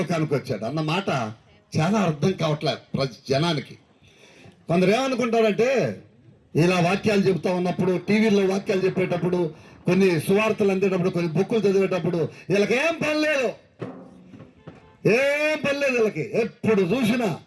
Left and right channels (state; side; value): identical; both; correlation 1.00